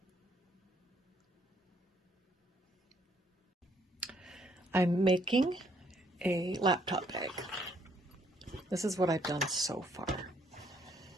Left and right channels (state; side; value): normal; both; correlation 0.68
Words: I'm making a laptop bag. This is what I've done so far.